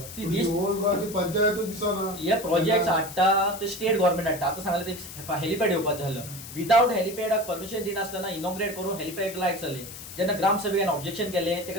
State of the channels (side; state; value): left; noise; hiss, 13 dB below the sound